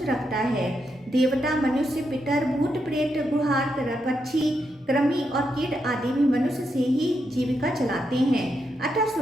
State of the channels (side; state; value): both; normal; correlation 0.82